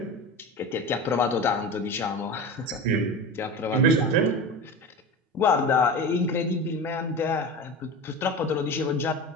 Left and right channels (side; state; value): both; normal; correlation 0.29